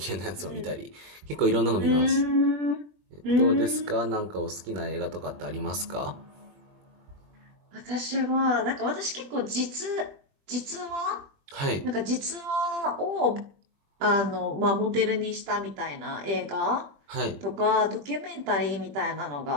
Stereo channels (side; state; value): left; late; 20 ms